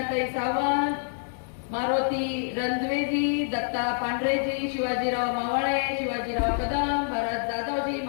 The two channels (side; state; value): right; silent; digital silence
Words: सावंत, मारुती रणद्वेजी, दत्ता पांढरेजी, शिवाजीराव मावळे, शिवाजीराव कदम, भरत जाधवजी,